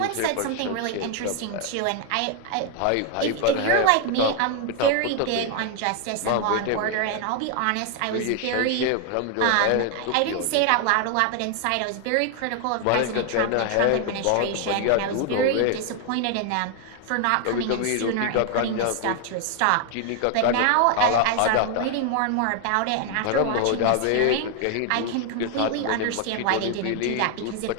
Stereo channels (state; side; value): different; both; correlation 0.01